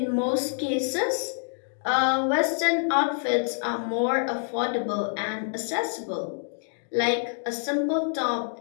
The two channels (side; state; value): right; silent; digital silence